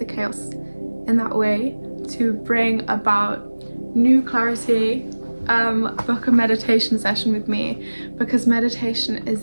chaos in that way to bring about new clarity, book a meditation session with me, because meditation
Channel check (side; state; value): both; inverted; correlation -1.00